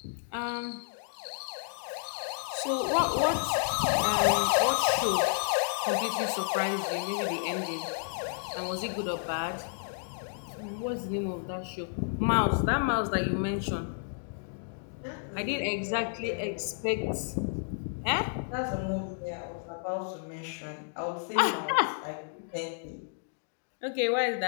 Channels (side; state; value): right; silent; digital silence